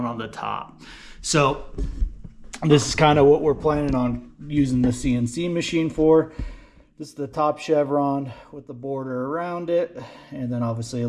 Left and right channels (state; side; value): identical; both; correlation 1.00